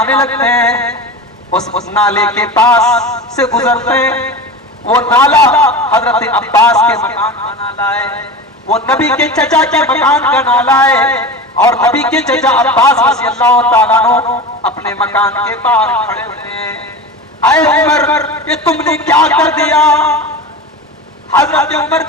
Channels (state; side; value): normal; both; correlation 0.29